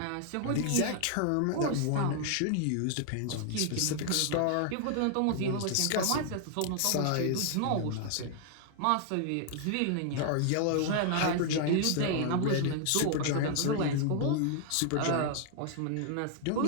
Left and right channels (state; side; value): different; both; correlation 0.00